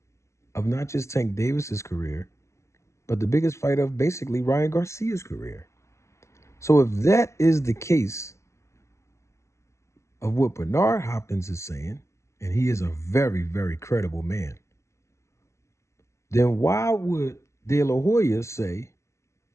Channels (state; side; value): late; right; 0.14 ms